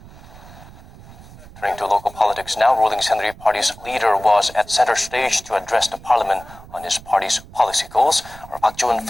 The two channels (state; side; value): noise; right; rumble, 20 dB below the sound